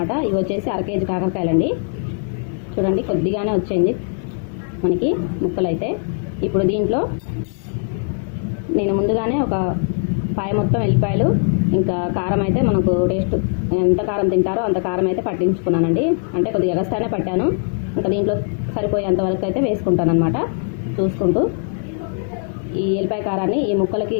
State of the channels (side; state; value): right; silent; 56 dB below the other